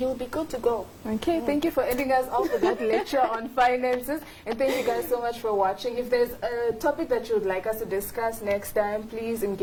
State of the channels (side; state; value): both; identical; correlation 1.00